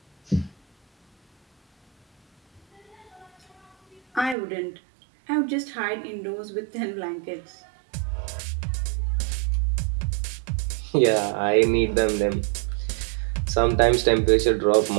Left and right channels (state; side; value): drops out; left; at 4.4 s